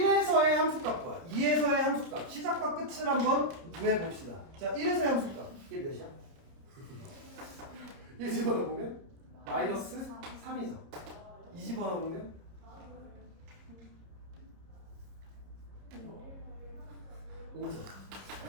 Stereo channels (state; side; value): late; left; 30 ms